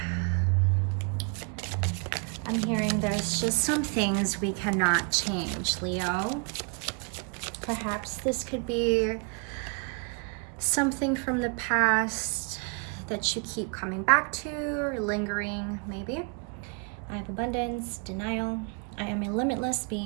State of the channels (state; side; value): quieter; left; 37.3 dB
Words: I'm hearing there's just some things we cannot change, Leo. Perhaps this could be something from the past that you keep coming back to or lingering, maybe. I have abundance, denial. I am a limitless